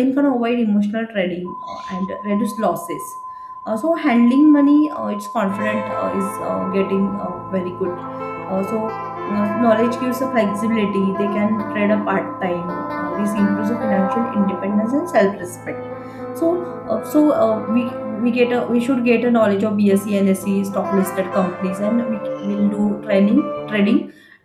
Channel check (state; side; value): identical; both; correlation 1.00